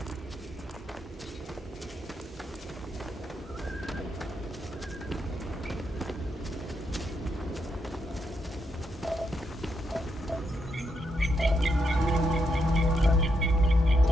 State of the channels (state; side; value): normal; both; correlation 0.80